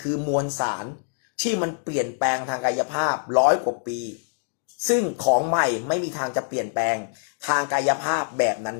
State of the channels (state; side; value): silent; right; digital silence